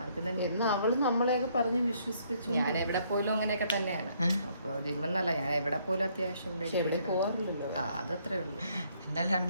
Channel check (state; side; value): inverted; both; correlation -0.68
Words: എന്ന് അവള് നമ്മളെയൊക്കെ പറഞ്ഞ് വിശ്വസിപ്പിച്ചു. ഞാൻ എവിടെ പോലും അങ്ങനെയൊക്കെ തന്നെയാണ്. അപ്പൊ ജിമ്മെന്നല്ല, ഞാൻ എവിടെ പോലും അത്യാവശ്യം പോവാറില്ലല്ലോ. അതത്രേ ഉള്ളൂ. എന്തായാലും 2